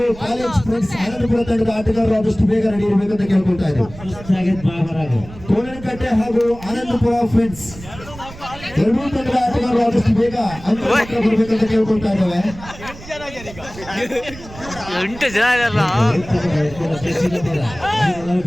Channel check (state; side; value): noise; right; rumble, 16 dB below the sound